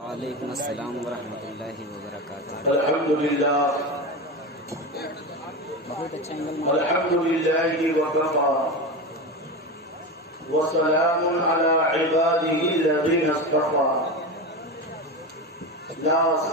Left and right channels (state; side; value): normal; both; correlation 0.22